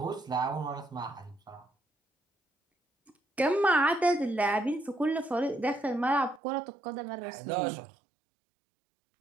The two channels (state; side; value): drops out; left; at 6.4 s